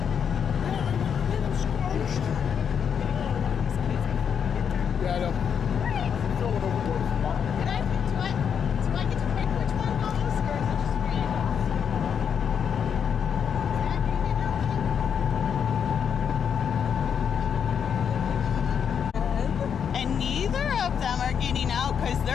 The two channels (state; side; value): quieter; right; 7.5 dB